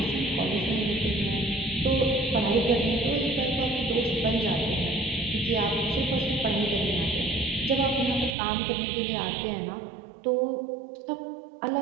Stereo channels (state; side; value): drops out; left; at 8.3 s